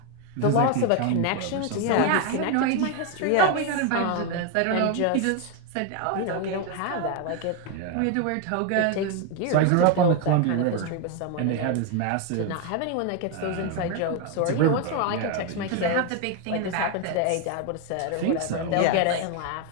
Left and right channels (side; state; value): both; different; correlation 0.01